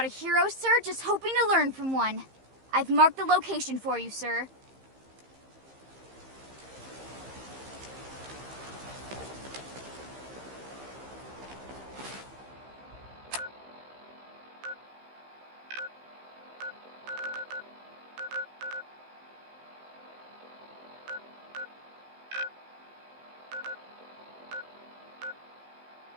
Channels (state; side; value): late; left; 15 ms